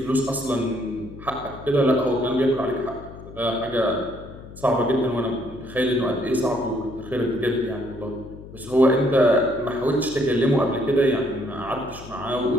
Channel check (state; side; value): noise; left; hum, 16 dB below the sound